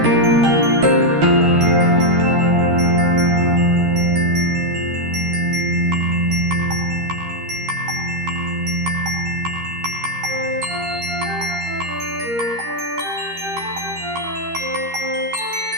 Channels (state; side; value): late; left; 13 ms